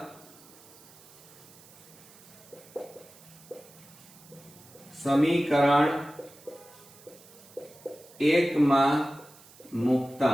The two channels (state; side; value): noise; right; hiss, 23 dB below the sound